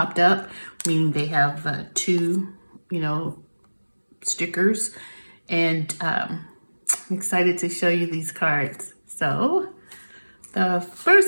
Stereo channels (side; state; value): both; inverted; correlation -1.00